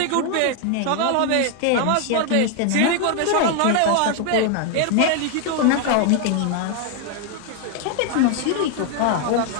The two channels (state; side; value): different; both; correlation 0.00